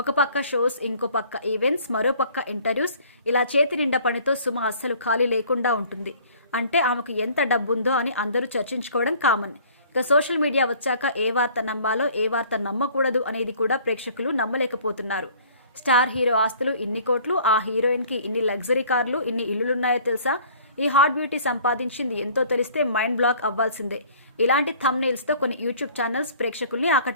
పక్క షోస్, ఇంకో పక్క ఈవెంట్స్, మరో పక్క ఇంటర్వ్యూస్, ఇలా చేతి నిండా పనితో సుమ అస్సలు ఖాళీ లేకుండా ఉంటుంది. అంటే ఆమెకు ఎంత డబ్బుందో అని అందరూ చర్చించుకోవడం కామన్. ఇక సోషల్ మీడియా వచ్చాక ఏ వార్త నమ్మాలో, ఏ వార్త నమ్మకూడదు అనేది కూడా ప్రేక్షకులు నమ్మలేకపోతున్నారు. స్టార్ హీరో ఆస్తులు ఇన్ని కోట్లు, ఆ హీరోయిన్కి ఇన్ని లగ్జరీ కార్లు, ఇన్ని ఇల్లులున్నాయో తెలుసా? ఈ హాట్ బ్యూటీ సంపాదించింది ఎంతో తెలిస్తే మైండ్ బ్లాక్ అవ్వాల్సిందే. ఇలాంటి థంబ్నెయిల్స్తో కొన్ని యూట్యూబ్ ఛానల్స్ ప్రేక్షకుల్ని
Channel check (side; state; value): both; inverted; correlation -0.53